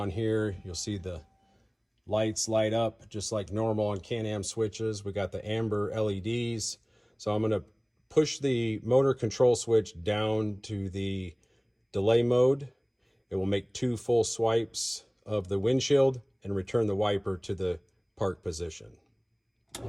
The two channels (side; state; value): both; identical; correlation 1.00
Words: here. You'll see the lights light up just like normal on Can-Am switches. We got the amber LEDs. So I'm going to push the motor control switch down to the delay mode. It will make 2 full swipes of the windshield and return the wiper to the park position.